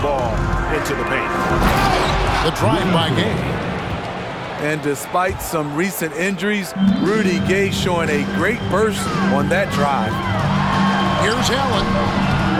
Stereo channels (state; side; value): identical; both; correlation 1.00